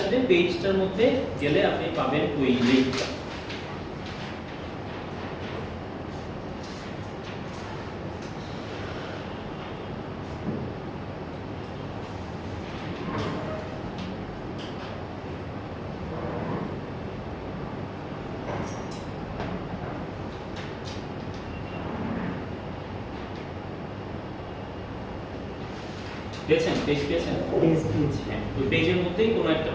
পেজটার মধ্যে গেলে আপনি পাবেন ওই লিংকটা। পেয়েছেন? পেজ পেয়েছেন? হ্যাঁ, ওই পেজের মধ্যেই কোনো একটা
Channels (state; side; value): identical; both; correlation 1.00